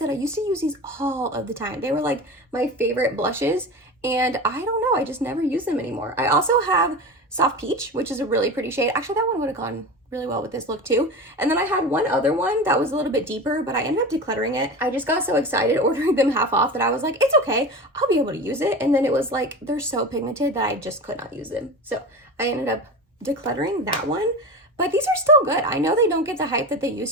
I used to use these all of the time. They were like my favorite blushes, and I don't know, I just never use them anymore. I also have Soft Peach, which is a really pretty shade. Actually, that one would have gone really well with this look too. And then I had one other one that was a little bit deeper, but I ended up decluttering it. I just got so excited ordering them half off that I was like, it's okay, I'll be able to use it. And then it was like, they're so pigmented that I just could not use them. So I ended up decluttering that one. But these are still good. I know they don't get the hype that they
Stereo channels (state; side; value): normal; both; correlation 0.28